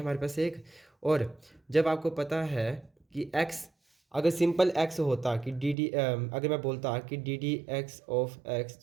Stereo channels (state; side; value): drops out; left; at 5.8 s